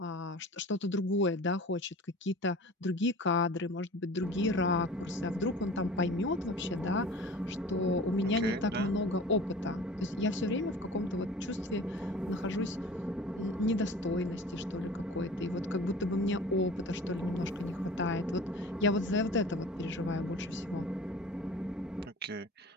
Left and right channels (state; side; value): normal; both; correlation 0.41